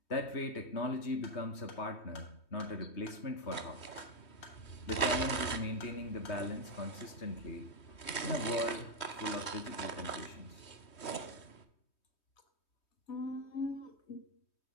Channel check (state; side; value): late; right; 3.2 ms